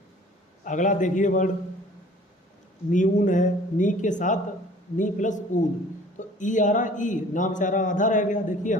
अगला देखिए वर्ड नीऊन है, नी के साथ नी प्लस ऊन, तो ई आ रहा, ई ना बेचारा आधा रह गया। देखिए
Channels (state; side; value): normal; both; correlation 0.50